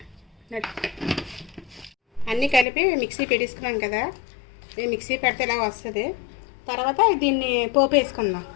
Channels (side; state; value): right; drops out; at 2.7 s